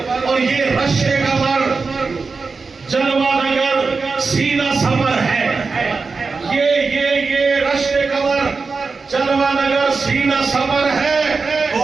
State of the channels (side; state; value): left; quieter; 4.5 dB